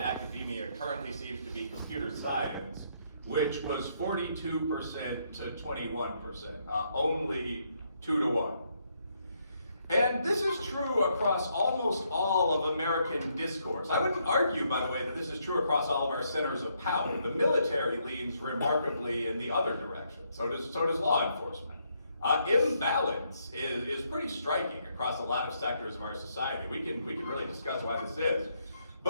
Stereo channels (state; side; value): inverted; both; correlation -0.75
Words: currently seems to be computer science, which was 42% to 21%, only 2 to 1. And this is true across almost all of American discourse. I wouldn't argue, by the way, that this is true across all of our centers of power. The military leans remarkably in the other direction. So does law enforcement. Imbalance is pretty striking across a lot of sectors of our society. We can really discuss why this is.